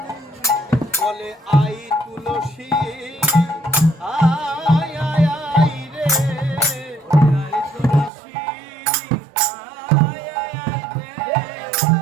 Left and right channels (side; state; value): left; drops out; at 8.1 s